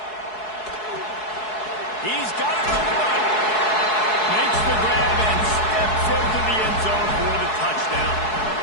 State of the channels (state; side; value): late; right; 4.7 ms